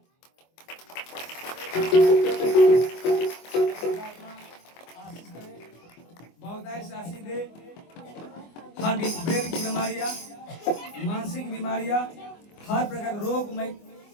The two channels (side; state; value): right; late; 24 ms